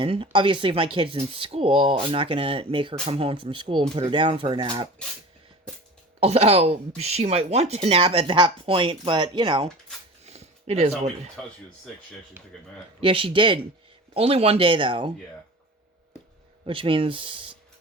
Obviously, if my kid's in school, I'm not going to make her come home from school and put her down for a nap. Although, she might want to nap at that point, but, you know, it is what... Until she was sick, she actually took a nap. Yeah, she did. Only one day, though. Yeah. Which means,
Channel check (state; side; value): normal; both; correlation 0.37